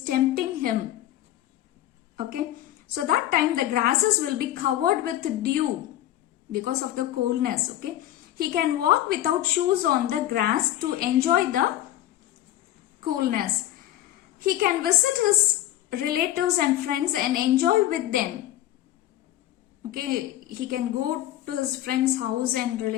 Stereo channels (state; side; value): quieter; right; 13.5 dB